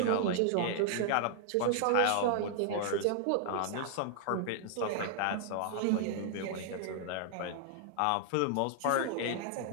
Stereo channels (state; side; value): different; both; correlation -0.01